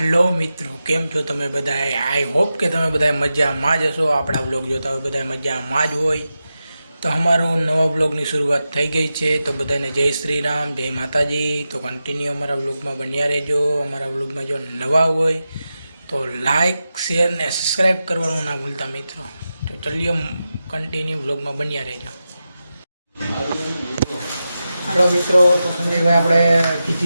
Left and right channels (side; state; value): both; inverted; correlation -0.91